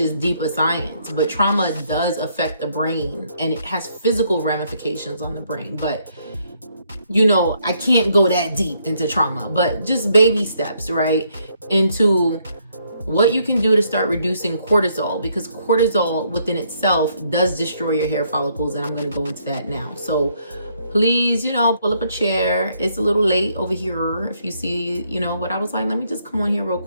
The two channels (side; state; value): both; inverted; correlation -0.71